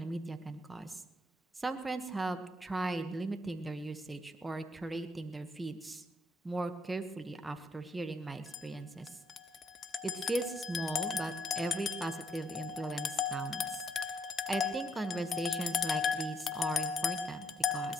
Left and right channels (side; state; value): both; normal; correlation 0.71